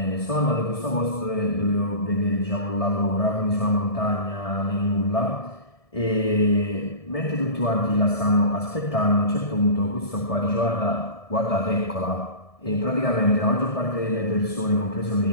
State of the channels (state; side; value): late; right; 1.7 ms